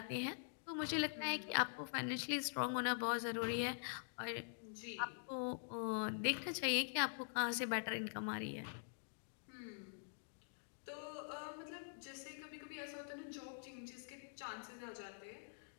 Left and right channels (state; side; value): silent; right; digital silence